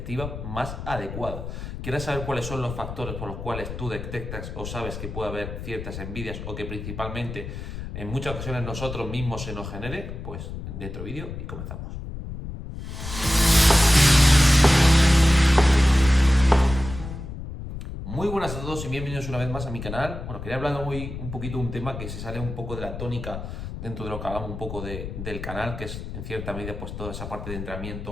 más adecuada. ¿Quieres saber cuáles son los factores por los cuales tú detectas o sabes que puede haber ciertas envidias o que principalmente en muchas ocasiones nosotros mismos se nos genere? Pues dentro vídeo y comenzamos. Muy buenas a todos y bienvenidos una vez más a mi canal. Bueno, quería hablar hoy un poquito de un tema que se sale un poco de la tónica dentro de lo que hablamos un poco del canal, que es en cierta medida pues toda esa parte de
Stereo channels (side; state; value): left; noise; rumble, 8 dB below the sound